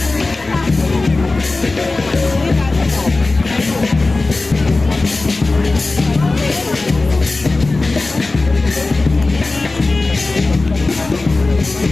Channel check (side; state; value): right; quieter; 3.3 dB